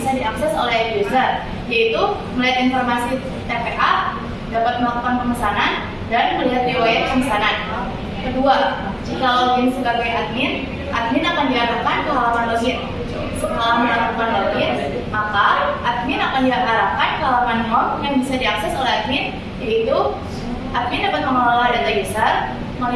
diakses oleh user, yaitu melihat informasi TPA, dapat melakukan pemesanan, dan melihat riwayat pemesanan. Kedua, jika login sebagai admin akan diarahkan ke halaman login. Setelah melakukan login, maka admin akan diarahkan ke halaman home yang bisa diakses oleh admin, yaitu admin dapat mengelola data user,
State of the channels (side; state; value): both; identical; correlation 1.00